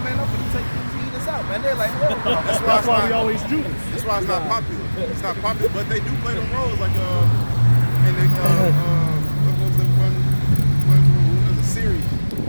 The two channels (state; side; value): inverted; both; correlation -1.00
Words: man, I'm gonna take these heathens out, man. They're like, hell no. That's why we always Judas. That's why it's not popular. It's not popular, but they do play them roles like and they what was the one was the series